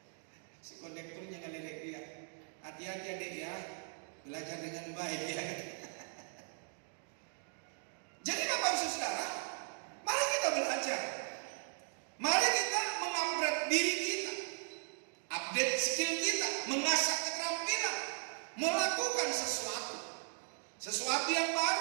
Si kondekturnya ngeledek dia. Hati-hati adik ya, belajar dengan baik ya. Jadi Bapak Ibu Saudara, mari kita belajar. Mari kita mengupgrade diri kita, update skill kita, mengasah keterampilan, melakukan sesuatu yang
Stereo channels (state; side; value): silent; left; 53 dB below the other